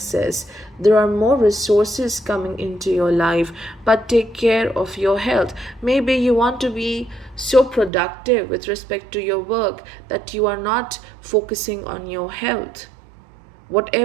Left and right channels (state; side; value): drops out; left; at 7.9 s